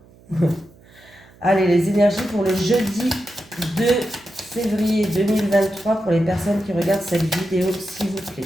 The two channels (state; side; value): noise; right; hum, 26 dB below the sound